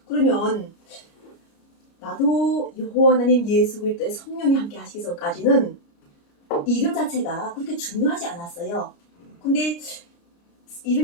그러면 나도 여호와 하나님 예수 그리스도의 성령이 함께 하시기 전까지는 이름 자체가 그렇게 중요하지 않았어요. 근데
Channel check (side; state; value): right; late; 29 ms